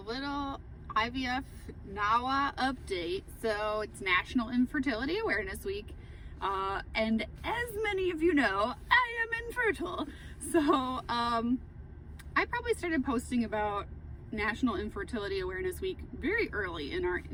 little IVF Niaw update. So it's National Infertility Awareness Week. And as many of you know, I am infertile. So I probably started posting about National Infertility Awareness Week very early in our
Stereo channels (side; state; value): both; identical; correlation 1.00